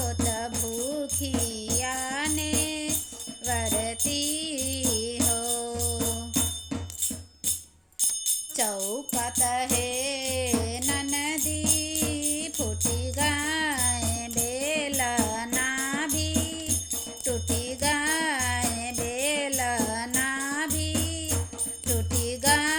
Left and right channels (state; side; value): identical; both; correlation 1.00